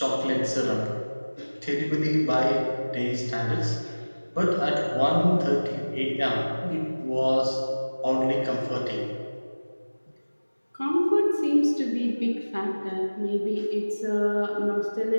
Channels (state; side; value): inverted; both; correlation -1.00